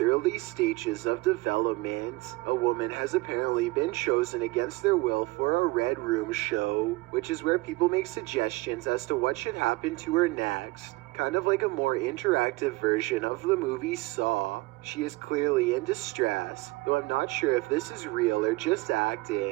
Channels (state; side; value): quieter; left; 22.2 dB